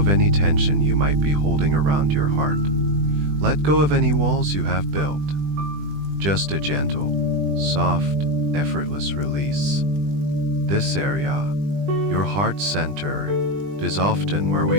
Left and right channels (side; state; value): left; late; 20 ms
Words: any tension you might be holding around your heart. Let go of any walls you have built. Just a gentle, soft, effortless release. This area, your heart center, is often where we